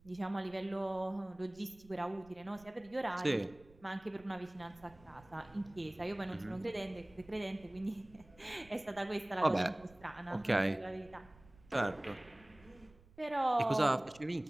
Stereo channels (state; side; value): noise; right; rumble, 25 dB below the sound